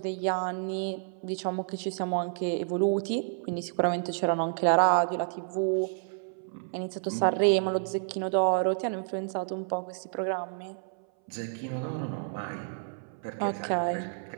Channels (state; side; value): silent; left; 58 dB below the other